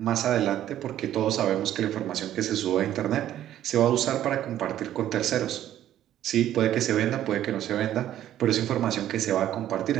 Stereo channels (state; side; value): quieter; left; 12.0 dB